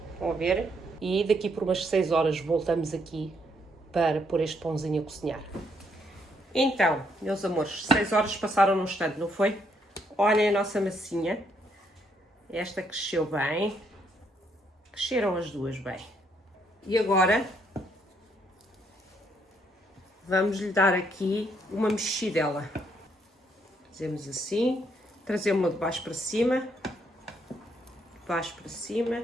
vão ver, e daqui por umas 6 horas voltamos aqui para pôr este pãozinho a cozinhar. Então, meus amores, 6 horas passaram num instante, não foi? Olhem a nossa massinha, esta cresceu bem. Cresceram as duas bem. E agora vamos lhe dar aqui uma mexidela. Fazemos assim, trazemos-la de baixo para cima,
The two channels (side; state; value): both; normal; correlation 0.72